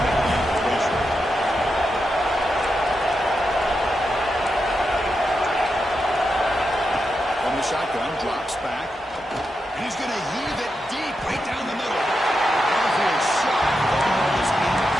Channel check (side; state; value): both; normal; correlation 0.87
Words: at the inclination. From the shotgun, drops back. And he's going to heave it deep right down the middle. Downfield shot. The ball is